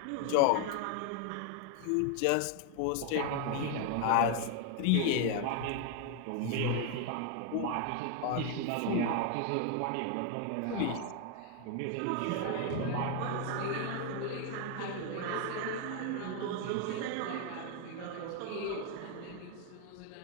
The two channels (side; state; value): both; different; correlation 0.01